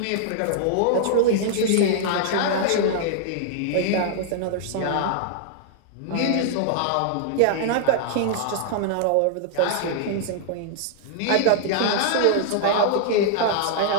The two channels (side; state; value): both; different; correlation -0.01